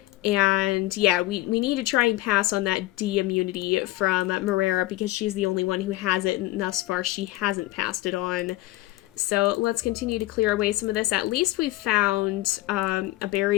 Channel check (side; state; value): right; quieter; 17.6 dB